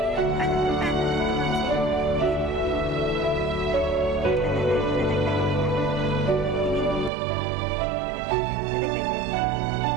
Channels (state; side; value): drops out; left; at 7.1 s